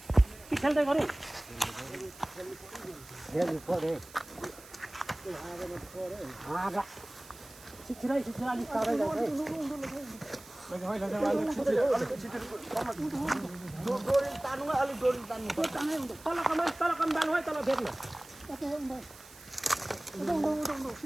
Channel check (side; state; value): right; noise; hiss, 20 dB below the sound